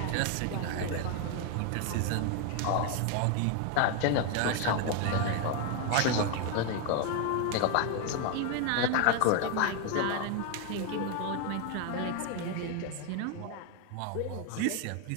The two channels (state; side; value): different; both; correlation 0.01